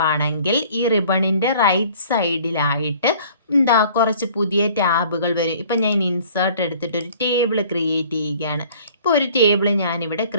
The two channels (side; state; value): both; inverted; correlation -0.52